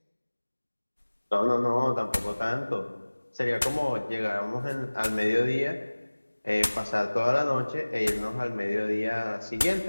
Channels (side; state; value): both; inverted; correlation -1.00